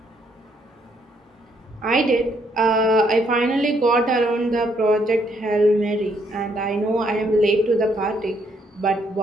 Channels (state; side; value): normal; both; correlation 0.71